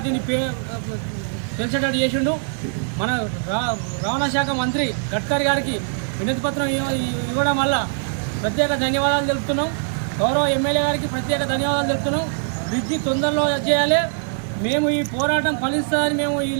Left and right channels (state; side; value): silent; left; 58 dB below the other